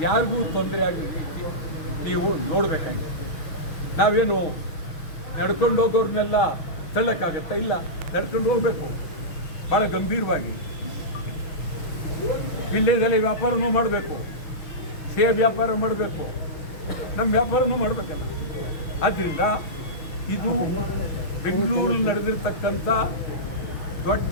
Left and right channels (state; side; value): late; right; 6.3 ms